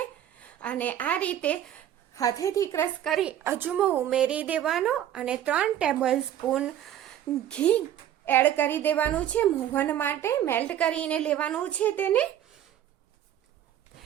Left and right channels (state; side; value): quieter; left; 11.1 dB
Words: અને આ રીતે હાથેથી ક્રશ કરી અજમો ઉમેરી દેવાનો અને 3 ટેબલ સ્પૂન ઘી એડ કરી દેવાનું છે. મોહન માટે મેલ્ટ કરીને લેવાનું છે. તેને